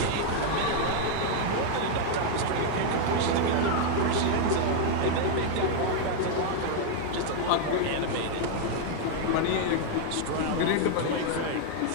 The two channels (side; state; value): both; different; correlation 0.00